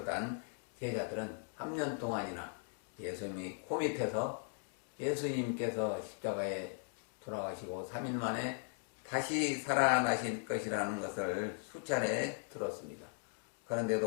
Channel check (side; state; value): right; silent; 52 dB below the other